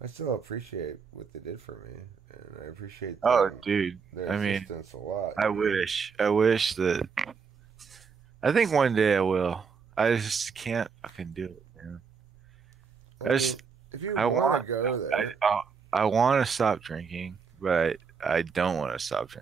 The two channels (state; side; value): quieter; left; 5.7 dB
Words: I still appreciate what they did for me, and I appreciate dude. their I mean, assistance a lot. I wish that. I think one day I will. I just can't fucking do it, man. If you want to go there, I want to stop drinking, but I don't want to stop